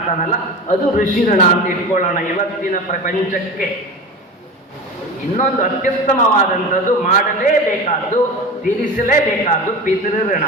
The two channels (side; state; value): both; normal; correlation 0.30